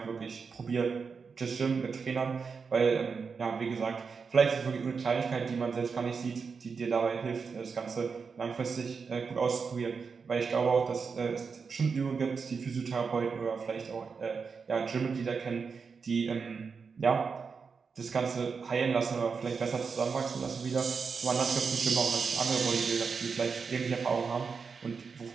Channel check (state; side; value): quieter; left; 5.4 dB